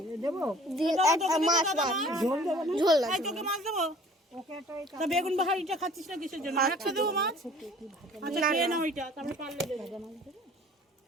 মাছ ঝোল না। বেগুন বাহারিটা খাচ্ছিস না কিসের জন্য? একশো দেবো মাছ। আচ্ছা খেয়ে নাও ওইটা, তারপরে পারলে দেবো।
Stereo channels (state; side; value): normal; both; correlation 0.50